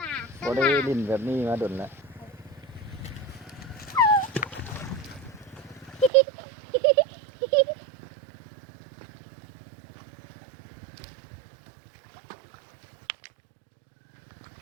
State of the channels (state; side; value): drops out; left; at 6.1 s